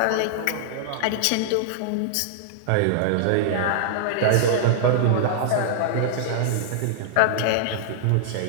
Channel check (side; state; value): both; different; correlation -0.01